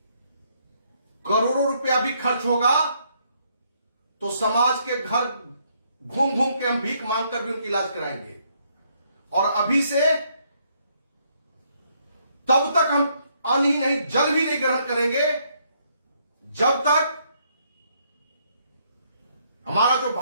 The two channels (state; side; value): inverted; both; correlation -0.71